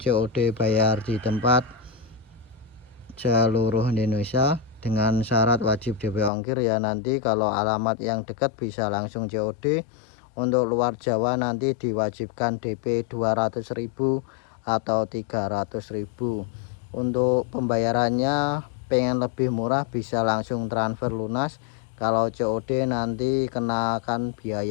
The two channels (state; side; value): drops out; right; at 6.3 s